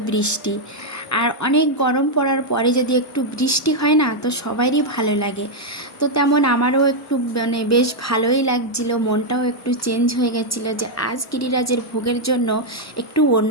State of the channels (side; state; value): both; normal; correlation -0.01